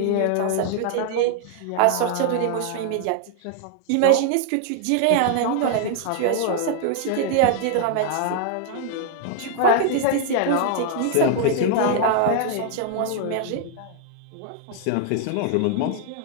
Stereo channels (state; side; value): different; both; correlation 0.00